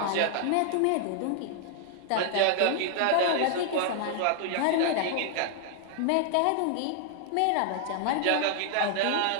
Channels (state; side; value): different; both; correlation 0.00